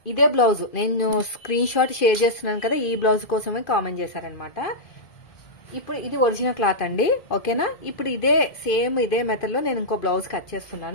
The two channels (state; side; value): late; right; 2.5 ms